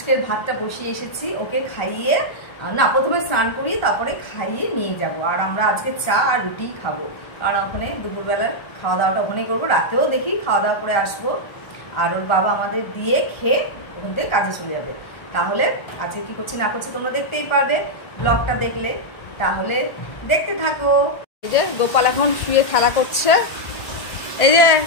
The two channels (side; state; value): right; late; 1.6 ms